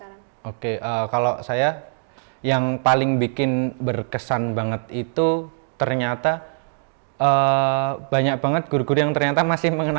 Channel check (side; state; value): left; silent; 64 dB below the other